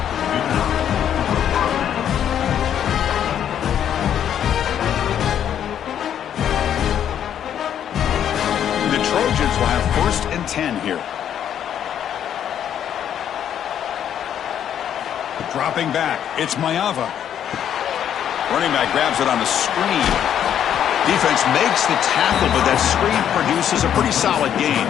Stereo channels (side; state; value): right; quieter; 9.7 dB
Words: The Trojans will have 1st and 10 here. Dropping back, it's Mayava. Running back grabs it on the screen. Defense makes the tackle, but that screen produces a pretty solid gain.